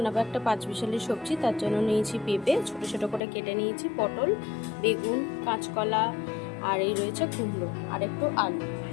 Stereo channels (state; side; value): drops out; right; at 3.2 s